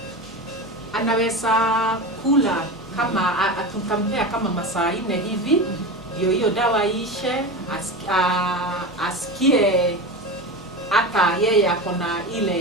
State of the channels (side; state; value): both; normal; correlation 0.25